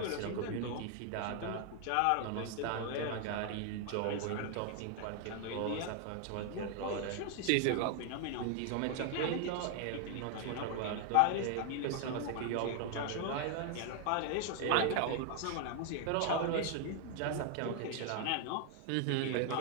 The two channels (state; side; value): different; both; correlation 0.00